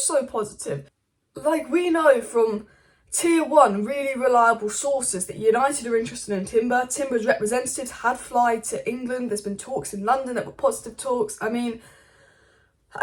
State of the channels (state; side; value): identical; both; correlation 1.00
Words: positive. Like, we know from Tier 1, really reliable sources that United are interested in Timber. Timber's representatives had flied to England. There's been talks in London that were positive talks. I mean,